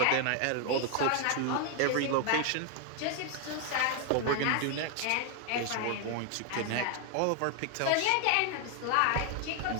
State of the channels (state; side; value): different; both; correlation 0.01